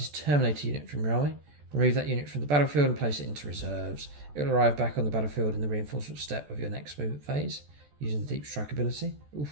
Terminator unit from your army. Remove that unit from the battlefield and place it into reserves. It will arrive back on the battlefield in the reinforcement step of your next movement phase using the Deep Strike ability.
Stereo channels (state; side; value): late; left; 14 ms